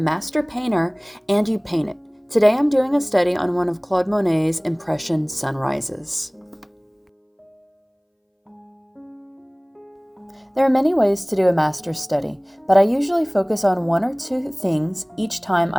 painter and you paint it. Today I'm doing a study on one of Claude Monet's Impression Sunrises. There are many ways to do a master's study, but I usually focus on one or two things each time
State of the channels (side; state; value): both; identical; correlation 1.00